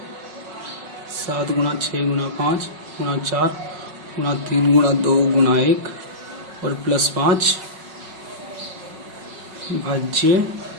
7 गुणा 6 गुणा 5 गुणा 4 गुणा 3 गुणा 2 गुणा 1 और प्लस 5 भाज्य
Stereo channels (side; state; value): left; late; 5.4 ms